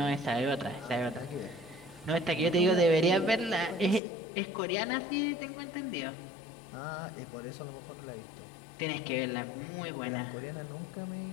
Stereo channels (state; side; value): drops out; right; at 4.0 s